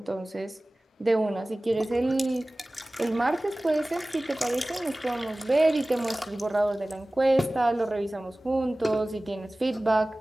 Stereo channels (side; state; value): both; normal; correlation 0.98